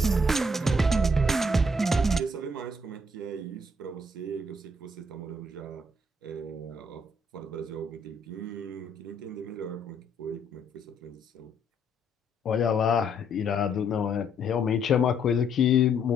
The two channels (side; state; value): both; normal; correlation 0.69